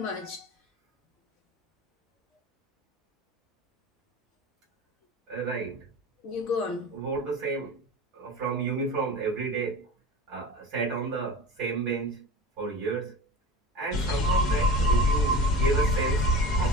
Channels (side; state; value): both; normal; correlation 0.33